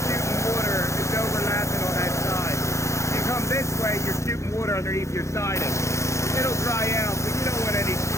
water, it's overlapping on that side. You come this way, you're shooting water underneath your siding. It'll dry out, but you don't want any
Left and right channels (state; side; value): late; right; 0.14 ms